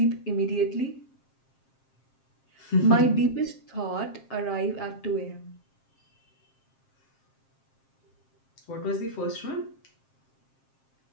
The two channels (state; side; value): late; right; 7.5 ms